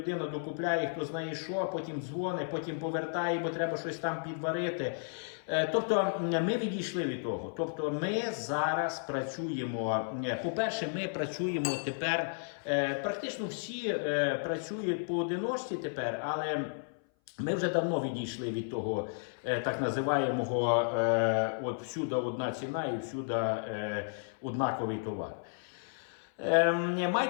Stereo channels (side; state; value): right; silent; 56 dB below the other